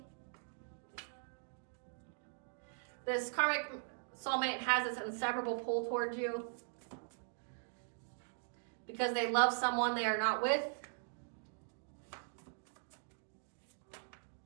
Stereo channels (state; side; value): silent; left; digital silence